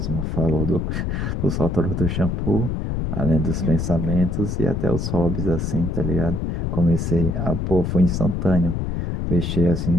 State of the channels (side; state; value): left; noise; rumble, 1 dB below the sound